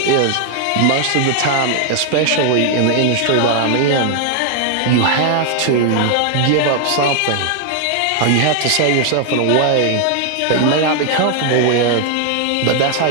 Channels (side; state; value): both; different; correlation 0.00